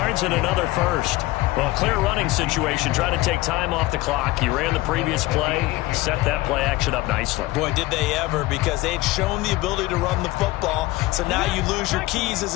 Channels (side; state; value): right; quieter; 18.6 dB